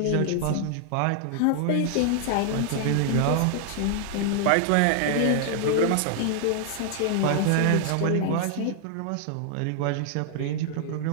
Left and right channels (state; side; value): different; both; correlation 0.00